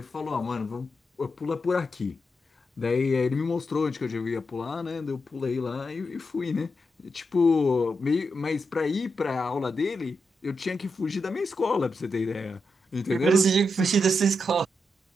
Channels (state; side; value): normal; both; correlation 0.85